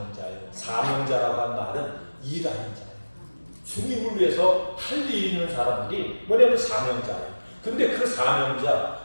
사명자라고 한 말은 일하는 자예요. 주님을 위해서 할 일 있는 사람들이 뭐냐면 사명자예요. 근데 그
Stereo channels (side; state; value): both; inverted; correlation -1.00